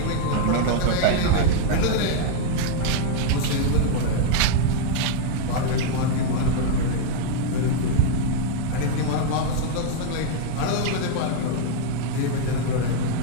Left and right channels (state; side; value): different; both; correlation 0.00